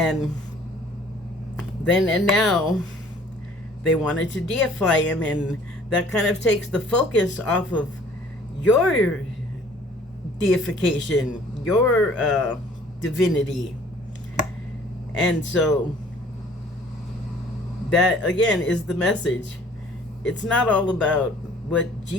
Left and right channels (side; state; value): both; normal; correlation 0.54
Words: then and now they wanted to deify him, and that kind of takes the focus off of your deification, your divinity. And so that again is the message. It's not all about what